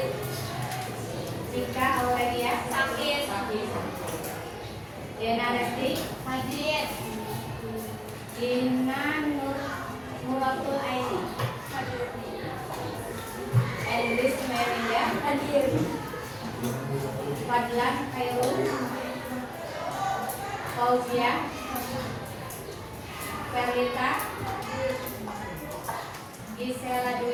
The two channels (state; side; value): identical; both; correlation 1.00